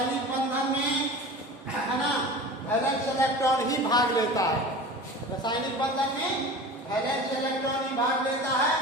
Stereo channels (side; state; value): both; normal; correlation 0.36